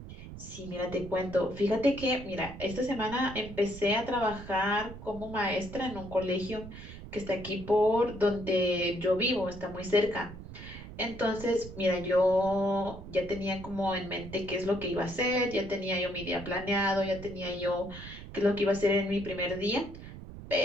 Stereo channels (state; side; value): noise; right; rumble, 13 dB below the sound